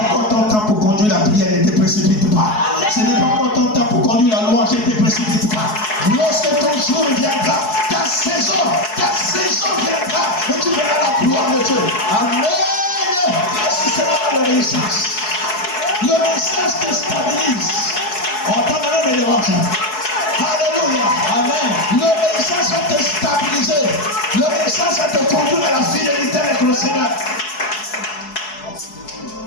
ton temps pour conduire la prière, ne te précipite pas. Amen. Ce n'est pas encore ton temps pour conduire la louange, ne te précipite pas. Lorsque ton jour viendra, ta saison viendra et tu verras la gloire de Dieu. Amen. Merci Seigneur l'obéissance. L'obéissance te stabilise. On entend même les dérange. Alléluia. L'obéissance va te stabiliser. L'obéissance va te conduire à la fidélité avec le Seigneur.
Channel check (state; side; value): late; right; 4.7 ms